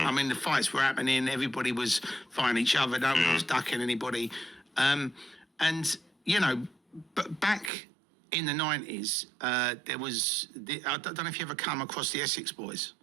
mean, the fights were happening, everybody was fighting each other, no one was ducking anybody. And, you know, but back in the 90s, there was, I don't know if you ever come across the Essex boys.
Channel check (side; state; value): left; drops out; at 7.7 s